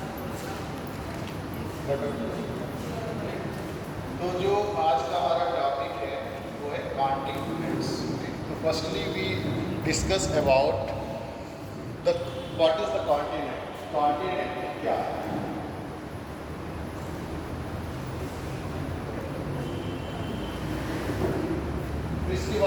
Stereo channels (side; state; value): both; identical; correlation 1.00